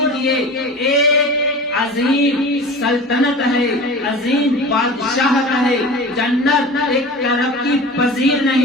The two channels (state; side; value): normal; both; correlation 0.36